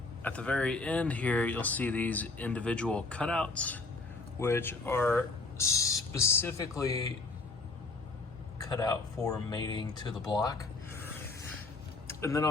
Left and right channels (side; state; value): right; quieter; 3.5 dB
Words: at the very end here, you'll see these individual cutouts, which are specifically cut out for mating to the block. And then